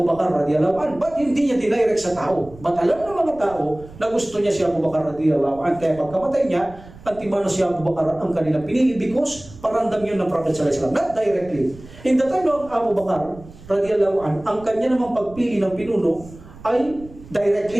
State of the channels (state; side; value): noise; right; rumble, 19 dB below the sound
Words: Bakar radhiyallahu anhu, but hindi niya dinirect sa tao. But alam ng mga tao na gusto niya si Abu Bakar radhiyallahu anhu, kaya pagkamatay niya, antimano si Abu Bakar ang kanilang pinili because paramdam yun ng Prophet sallallahu alaihi wasallam, not directly. In the time of Abu Bakar radhiyallahu anhu, ang kanya namang pagpili ng pinuno ay